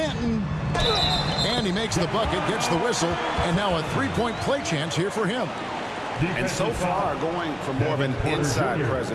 And he makes the bucket, gets the whistle. And now a 3-point play chance here for him. And so far, going for more of an inside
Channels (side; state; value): both; identical; correlation 1.00